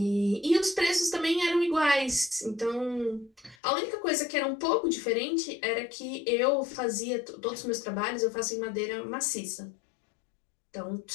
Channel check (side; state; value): right; drops out; at 3.6 s